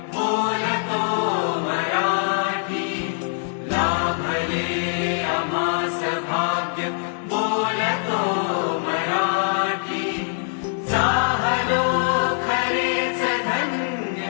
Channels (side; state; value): right; silent; 63 dB below the other